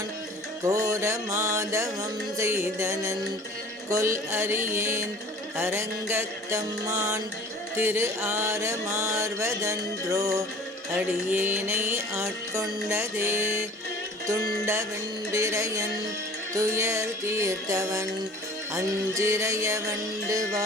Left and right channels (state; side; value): normal; both; correlation 0.45